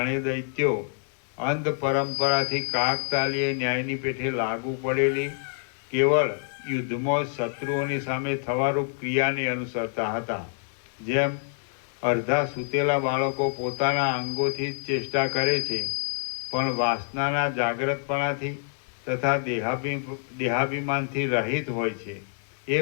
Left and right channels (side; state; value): right; silent; 60 dB below the other